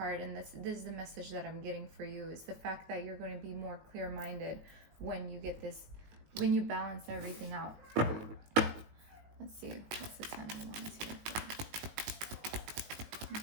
and this is the message that I'm getting for you, is the fact that you're going to be more clear-minded when you get this, when you balance everything out. Let's see, what's the 10 of Wands here for? Let me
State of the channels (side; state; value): left; late; 18 ms